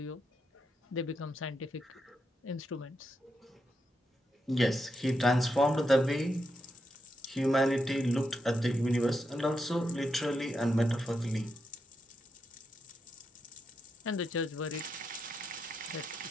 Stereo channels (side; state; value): both; normal; correlation 0.84